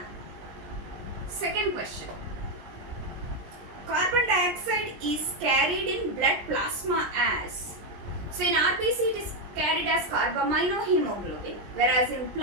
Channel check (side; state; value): left; late; 20 ms